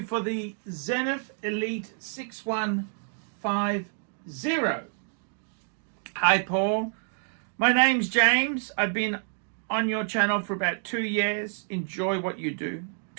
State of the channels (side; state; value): left; silent; 57 dB below the other